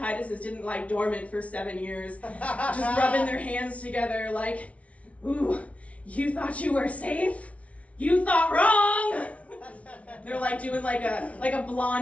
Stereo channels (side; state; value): right; late; 0.065 ms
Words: didn't lie dormant for 7 years, just rubbing their hands together like, ooh, you thought you were safe? You thought wrong! They're doing like a